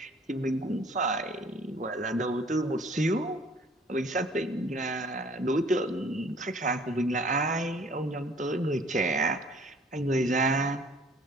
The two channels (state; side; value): normal; both; correlation 0.55